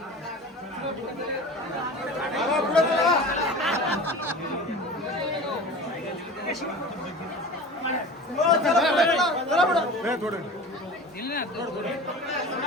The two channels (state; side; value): normal; both; correlation 0.36